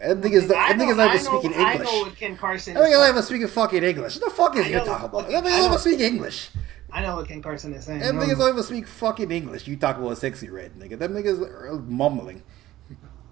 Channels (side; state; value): left; quieter; 15.0 dB